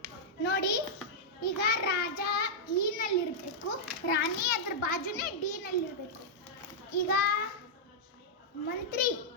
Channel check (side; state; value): both; normal; correlation -0.07